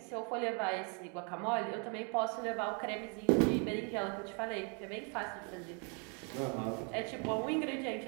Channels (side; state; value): left; quieter; 37.0 dB